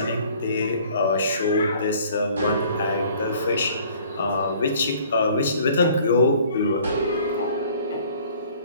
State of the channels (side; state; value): both; inverted; correlation -0.54